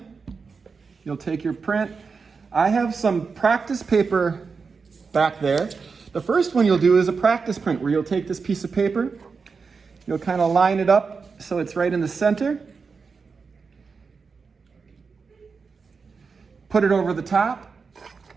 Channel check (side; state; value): left; quieter; 5.0 dB